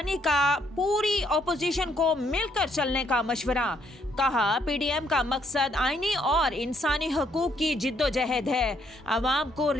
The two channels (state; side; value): normal; both; correlation 0.70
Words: का पूरी अपोजिशन को मिलकर चलने का मशवरा। कहा, पीडीएम का मकसद आईनी और इंसानी हकूक की जिद्दोजहद है। आवाम को